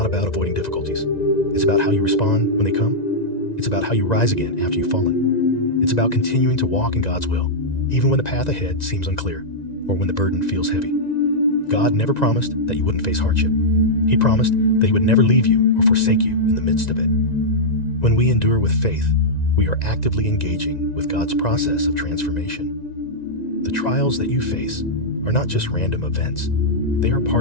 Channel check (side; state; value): right; late; 1.9 ms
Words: about avoiding difficulties. It's about how you respond when they come. It's about how you rise again after you've fallen. It's about continuing to walk in God's will, even when the path ahead seems unclear or when the burden feels heavy. God never promised that you wouldn't face hardship. He promised that He would never leave you or forsake you in the midst of it. When we endure with faith, we are actively engaging with God's process of transformation. The trials that you face are not just random events. They are